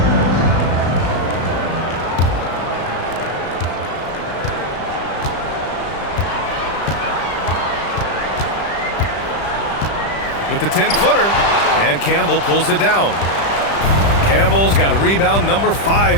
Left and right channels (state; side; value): late; right; 35 ms